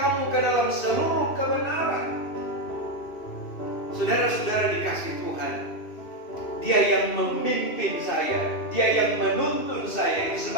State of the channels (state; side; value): late; right; 2.6 ms